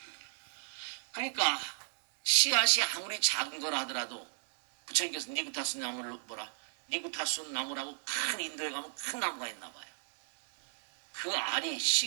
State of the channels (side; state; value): left; silent; digital silence